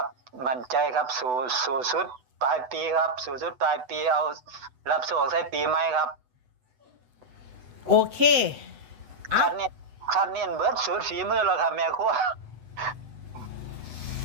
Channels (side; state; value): left; late; 8.0 ms